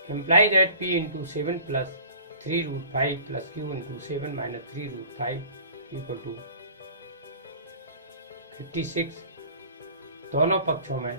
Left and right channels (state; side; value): inverted; both; correlation -0.46